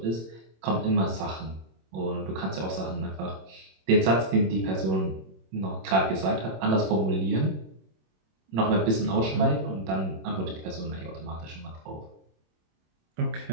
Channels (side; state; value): left; late; 26 ms